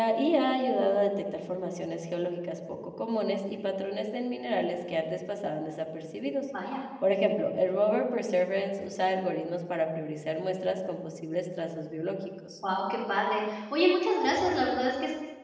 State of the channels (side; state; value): both; identical; correlation 1.00